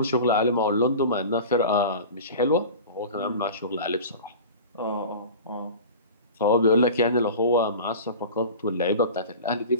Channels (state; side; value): inverted; both; correlation -0.35